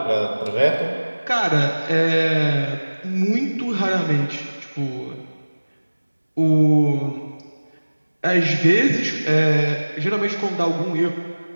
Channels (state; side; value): inverted; both; correlation -1.00